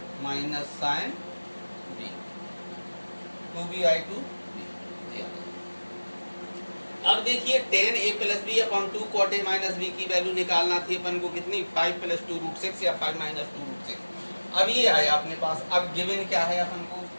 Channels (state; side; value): inverted; both; correlation -1.00